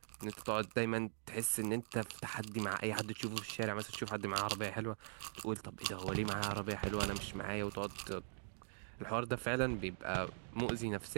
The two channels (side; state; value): left; silent; digital silence